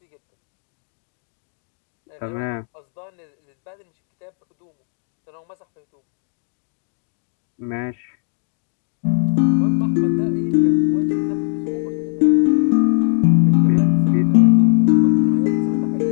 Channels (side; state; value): right; silent; digital silence